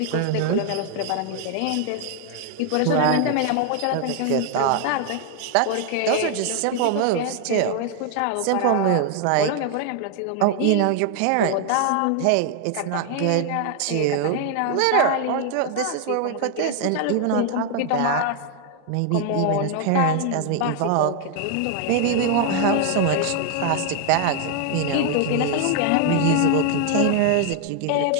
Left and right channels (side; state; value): both; different; correlation 0.00